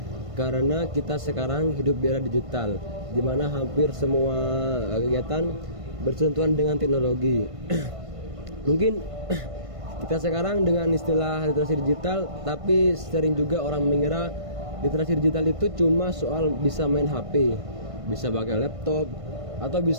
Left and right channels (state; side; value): late; left; 1.5 ms